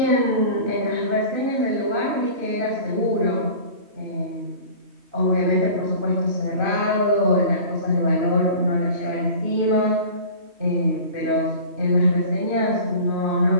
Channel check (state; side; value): late; left; 3.2 ms